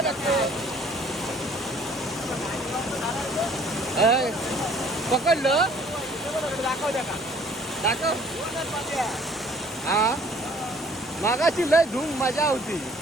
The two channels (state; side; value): normal; both; correlation 0.56